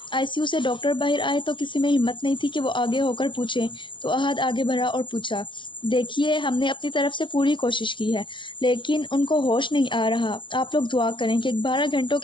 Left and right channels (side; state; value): right; late; 0.24 ms